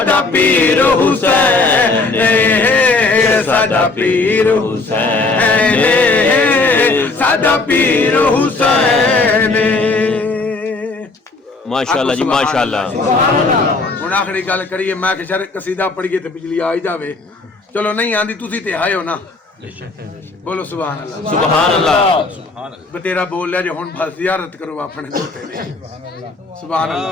پیر حسین ساڈا پیر حسین ساڈا پیر حسین. ماشاءاللہ جی ماشاءاللہ. ہن آخری گل کریے میں کہ شر قصیدہ پڑھیے تے بجلی آ ہی جاوے. چلو نہیں آندی تسی تے آئے ہو نا بولو سبحان اللہ سبحان اللہ. بتیرا بول لیا جو ہن بس زیارت کرو اپنے دوتے نے سبحان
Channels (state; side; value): quieter; right; 3.6 dB